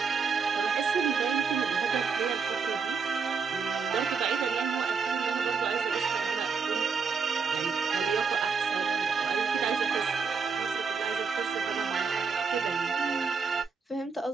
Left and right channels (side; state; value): left; quieter; 5.5 dB